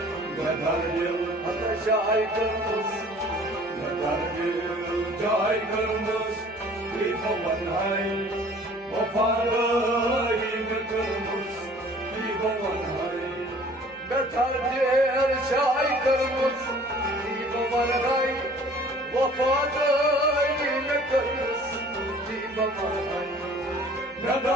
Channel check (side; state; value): both; normal; correlation 0.51